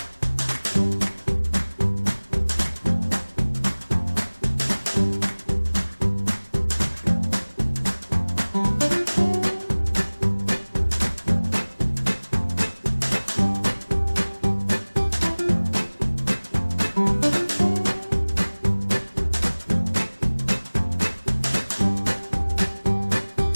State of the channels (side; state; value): both; inverted; correlation -1.00